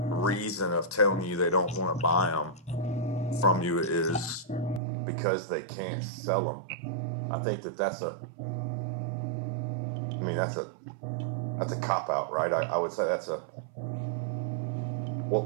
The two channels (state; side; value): drops out; left; at 4.8 s